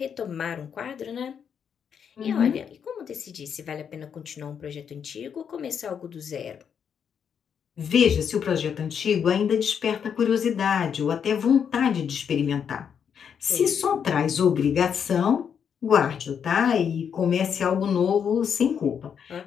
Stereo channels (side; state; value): right; quieter; 7.5 dB